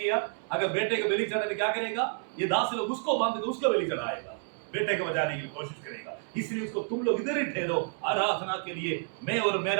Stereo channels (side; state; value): left; silent; 57 dB below the other